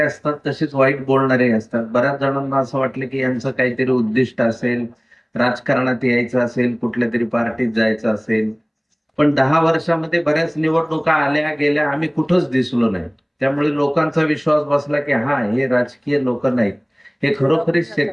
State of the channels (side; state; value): both; identical; correlation 1.00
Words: असतात तसेच वाईट बोलणारे असतात. बऱ्याच जणांना असं वाटलं की यांचं काहीतरी उद्दिष्ट असेल, राजकारणात यायचं असेल, कुठल्या तरी पार्टीत जायचं असेल. पण 10 वर्षामध्ये बऱ्याच निवडणुका आल्या गेल्या, आम्ही कुठंच दिसलो नाही. त्यामुळे लोकांचा विश्वास बसला की हा, हे राजकीय लोक नाहीत, हे खरोखरीच